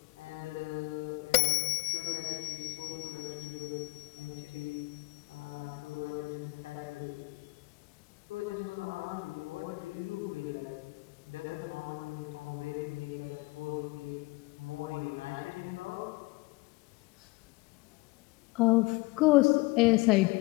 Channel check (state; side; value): quieter; right; 23.8 dB